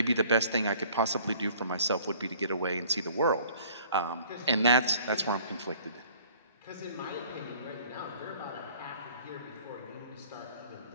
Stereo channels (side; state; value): both; inverted; correlation -0.54